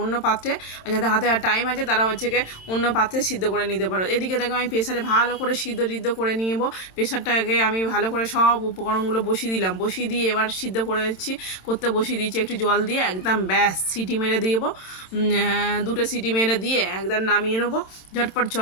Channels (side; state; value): right; late; 27 ms